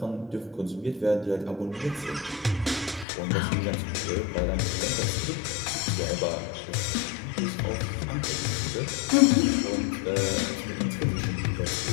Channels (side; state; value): right; drops out; at 3.1 s